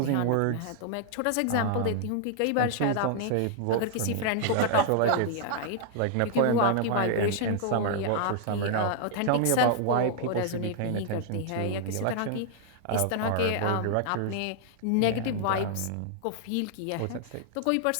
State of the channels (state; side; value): different; both; correlation 0.00